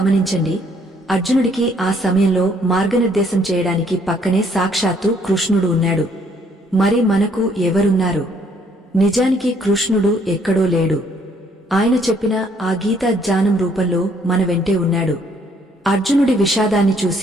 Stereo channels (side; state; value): both; normal; correlation 0.65